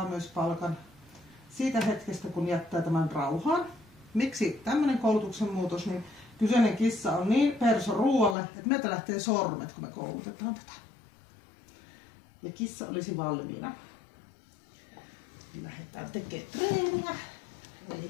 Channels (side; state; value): right; drops out; at 8.3 s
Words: myös palkan siitä hetkestä, kun jättää tämän rauhaan. Miksi tämmöinen koulutuksen muutos, niin kyseinen kissa on niin perso ruoalle, että meiltä lähtee sormet, kun me koulutetaan tätä. Ja kissa olisi valmiina. Lähdetään tekemään treeniä. Eli